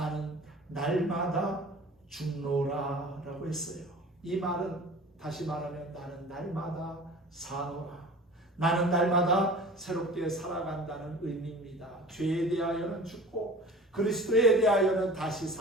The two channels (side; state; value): both; normal; correlation 0.41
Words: 날마다 죽노라 라고 했어요. 이 말은 다시 말하면 나는 날마다 사노라, 나는 날마다 새롭게 살아간다는 의미입니다. 죄에 대하여는 죽고 그리스도에 대하여는 다시